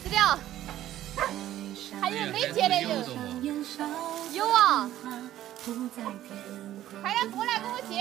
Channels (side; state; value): left; quieter; 13.1 dB